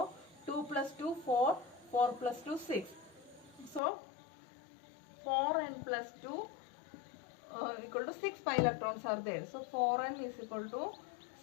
2 plus 2 4, 4 plus 2 6. So 4n plus 2 equal to 6 pi electrons are there. So 4n is equal to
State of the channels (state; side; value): drops out; right; at 3.8 s